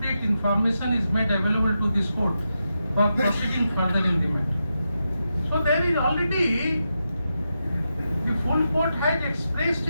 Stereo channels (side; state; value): both; inverted; correlation -0.87